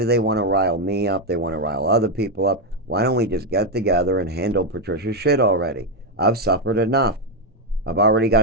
they want to rile me up? They want to rile other people up. Why don't we just get together and handle Patricia's shit already? I've suffered enough. I've already got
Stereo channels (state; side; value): normal; both; correlation 0.04